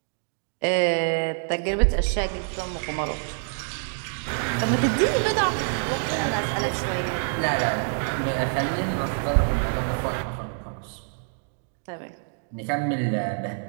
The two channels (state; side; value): silent; left; 61 dB below the other